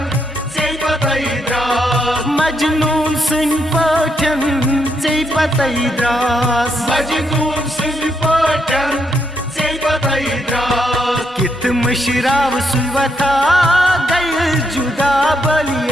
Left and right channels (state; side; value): normal; both; correlation 0.77